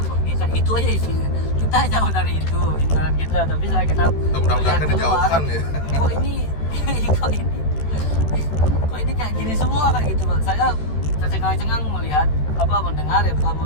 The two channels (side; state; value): right; late; 13 ms